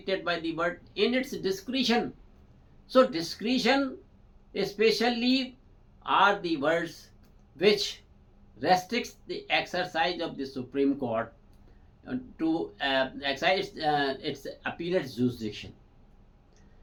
by the word in its discretion. So discretion, special leave are the words which restricts the exercise of the Supreme Court to exercise its appellate jurisdiction.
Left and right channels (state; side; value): identical; both; correlation 1.00